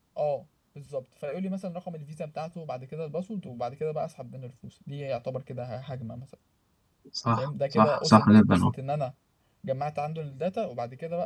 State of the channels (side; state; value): both; identical; correlation 1.00